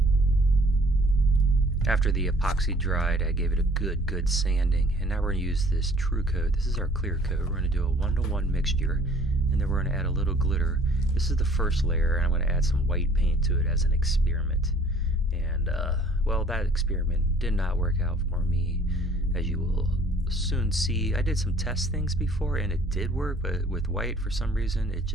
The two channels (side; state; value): both; normal; correlation 0.55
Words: After the epoxy dried, I gave it a good sanding, and now we're going to use this True Coat. This is our clear coat. We're going to do a 1-to-1 mixture, and then we're going to add a little glitter. This is the first layer, and I'm going to add some white paint to it as an experiment. And, well, that experiment did not work out for me, as you will soon see. I did some test things before, and it did work, but with white, for some reason, it